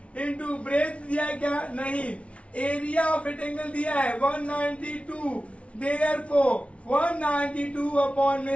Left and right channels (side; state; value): right; late; 0.062 ms